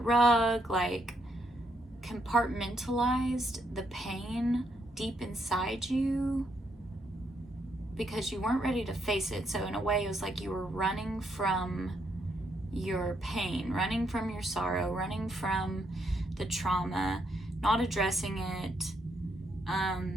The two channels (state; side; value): normal; both; correlation 0.76